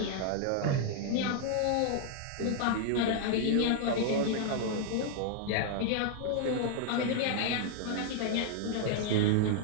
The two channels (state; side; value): different; both; correlation -0.01